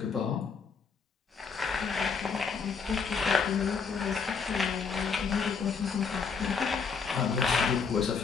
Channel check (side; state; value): right; quieter; 5.6 dB